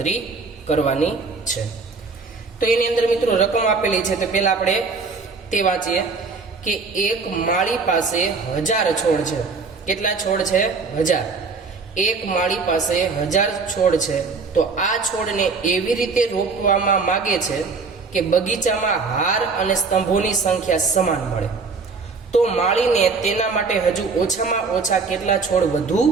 કરવાની છે. તો એની અંદર મિત્રો રકમ આપેલી છે. તો પહેલા આપણે તે વાંચીએ કે એક માળી પાસે 1000 છોડ છે. કેટલા છોડ છે? 1000. એક માળી પાસે 1000 છોડ છે. તો આ છોડને એવી રીતે રોપવામાં માંગે છે કે બગીચામાં હાર અને સ્તંભોની સંખ્યા સમાન મળે. તો માળીને તેના માટે હજુ ઓછામાં ઓછા કેટલા છોડ વધુ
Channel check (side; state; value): left; quieter; 4.5 dB